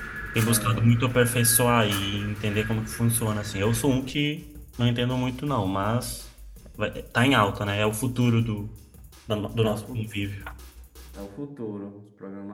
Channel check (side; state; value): both; identical; correlation 1.00